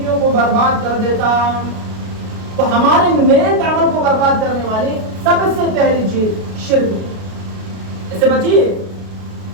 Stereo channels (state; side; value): late; left; 33 ms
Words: کو برباد کر دیتا۔ تو ہمارے نیک عمل کو برباد کرنے والی سب سے پہلی چیز شرک، اس سے بچیے،